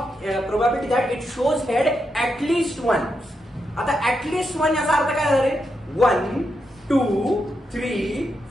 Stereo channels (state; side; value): normal; both; correlation 0.84